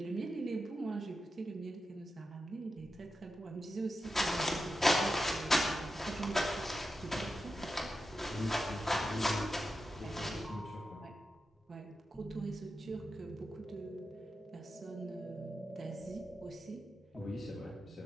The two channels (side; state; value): both; normal; correlation 0.90